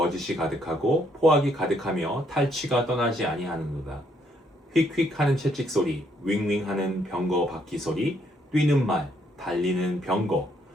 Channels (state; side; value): normal; both; correlation 0.71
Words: 가득하고 포악이 가득하며 탈취가 떠나지 아니하는도다. 휙휙하는 채찍 소리, 윙윙하는 병거 바퀴 소리, 뛰는 말, 달리는 병거,